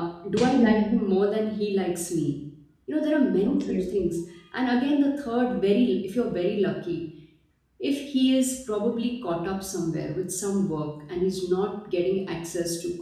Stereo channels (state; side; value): identical; both; correlation 1.00